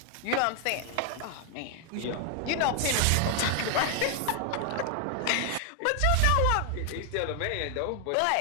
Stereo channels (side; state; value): both; different; correlation 0.00